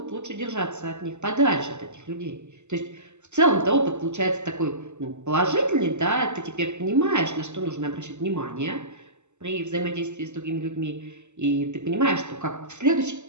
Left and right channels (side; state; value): left; late; 0.83 ms